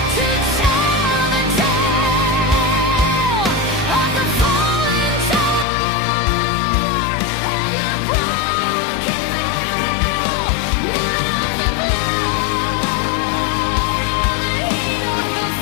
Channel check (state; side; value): drops out; right; at 5.7 s